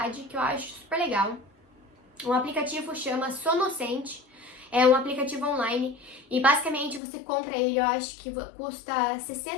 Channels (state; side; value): drops out; right; at 7.0 s